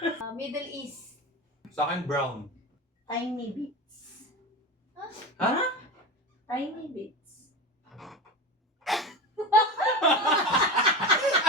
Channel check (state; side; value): normal; both; correlation 0.25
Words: Middle East. Sa akin, brown. Tiny bits. Ha? Tiny bits.